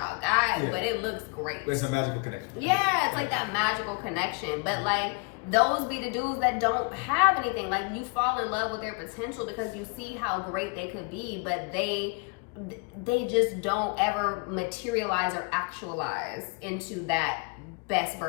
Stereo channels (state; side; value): quieter; right; 32.5 dB